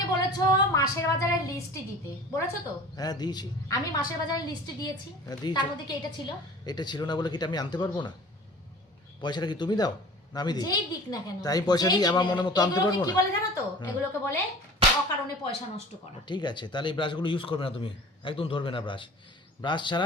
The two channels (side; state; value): both; normal; correlation 0.43